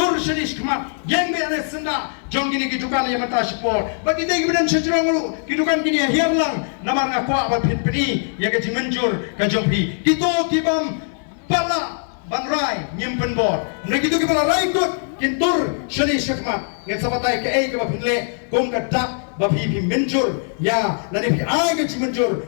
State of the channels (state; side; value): silent; right; 57 dB below the other